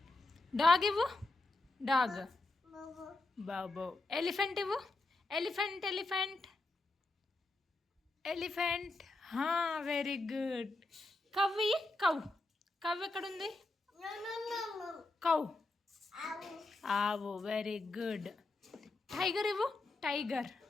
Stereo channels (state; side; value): quieter; right; 3.0 dB